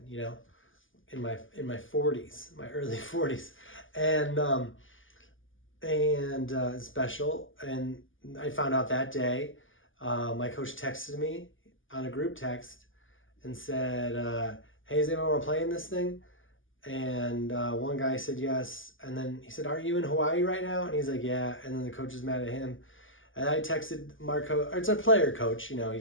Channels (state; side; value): late; right; 0.58 ms